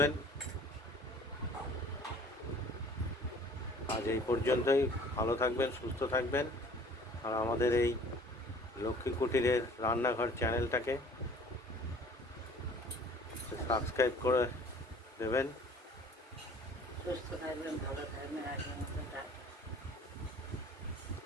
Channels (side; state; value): both; normal; correlation 0.50